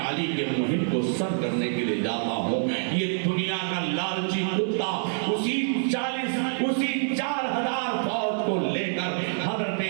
علی کے مہم کو سر کرنے کے لیے جاتا ہوں۔ یہ دنیا کا لالچی کتا اسی 4000 فوج کو لے کر حضرت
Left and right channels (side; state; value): left; silent; 56 dB below the other